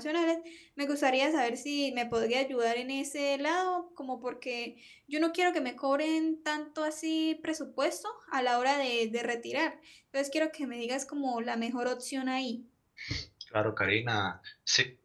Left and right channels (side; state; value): both; identical; correlation 1.00